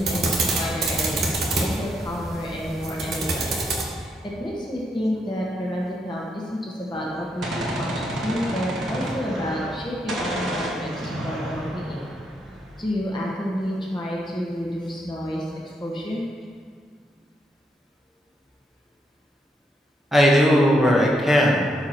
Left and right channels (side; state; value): both; normal; correlation 0.78